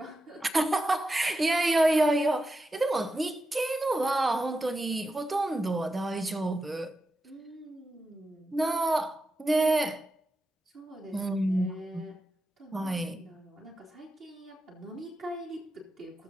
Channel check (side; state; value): both; normal; correlation 0.90